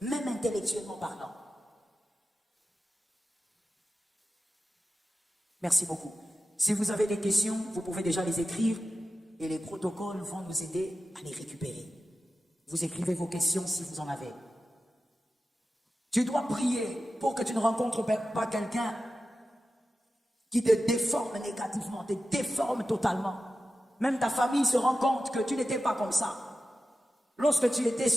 Même intellectuellement parlant. Merci beaucoup. Si vous avez des questions, vous pouvez déjà les écrire. Et les protocoles vont nous aider à les récupérer. Vous écrivez vos questions si vous en avez. Tu dois prier pour que tu ne rencontres pas quelqu'un qui te déforme négativement, te déforme totalement. Même ta famille se rend compte que tu n'étais pas comme ça. Lorsque tu étais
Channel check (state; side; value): normal; both; correlation 0.93